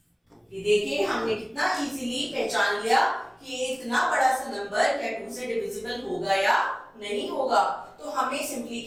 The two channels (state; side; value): identical; both; correlation 1.00